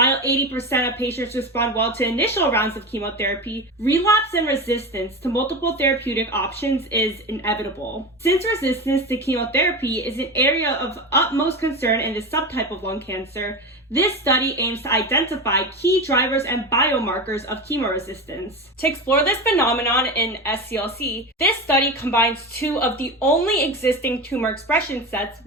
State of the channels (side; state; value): both; normal; correlation 0.24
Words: 80% of patients respond well to initial rounds of chemotherapy, relapse and resistance to multiple therapeutic options is inevitable. Since resistance to chemotherapy is an area of utmost concern in this subtype of lung cancer, this study aims to identify key drivers and biomarkers of chemoresistance. To explore this phenomenon in SCLC, this study combines two of the only existing tumor expression sets,